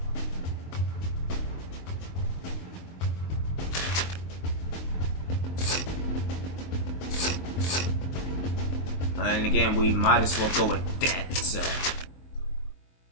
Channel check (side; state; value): right; late; 23 ms